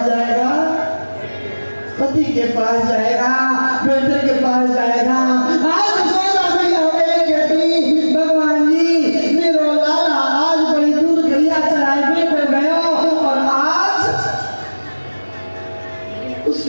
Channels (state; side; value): inverted; both; correlation -1.00